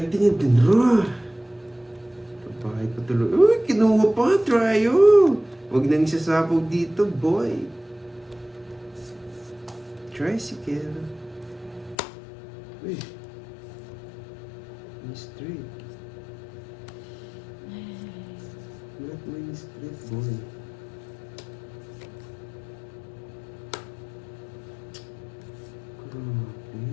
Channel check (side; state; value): right; drops out; at 12.0 s